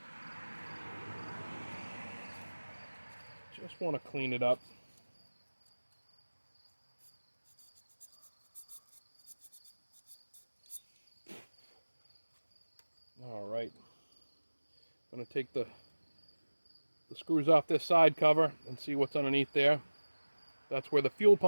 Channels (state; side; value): inverted; both; correlation -1.00